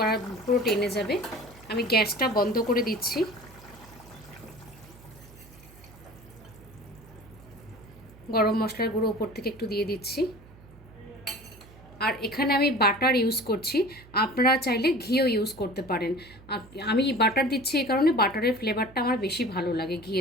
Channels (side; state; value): right; noise; hum, 22 dB below the sound